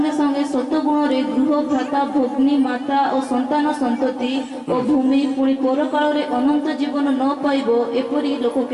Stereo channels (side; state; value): both; identical; correlation 1.00